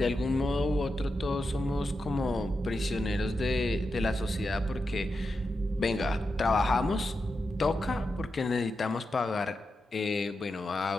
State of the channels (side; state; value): both; normal; correlation 0.88